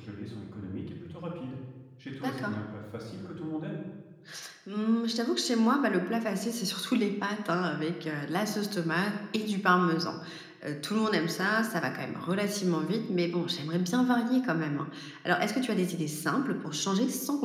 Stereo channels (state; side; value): identical; both; correlation 1.00